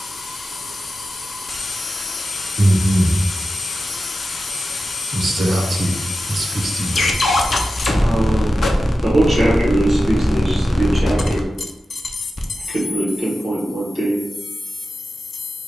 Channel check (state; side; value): normal; both; correlation 0.93